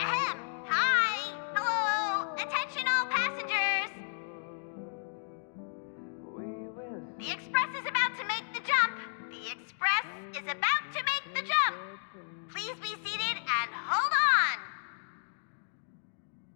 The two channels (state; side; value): silent; right; digital silence